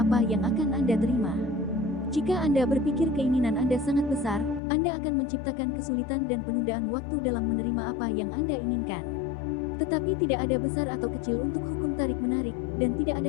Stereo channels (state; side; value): drops out; right; at 4.6 s